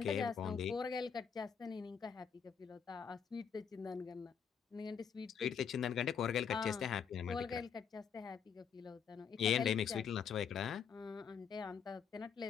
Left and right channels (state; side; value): quieter; right; 7.1 dB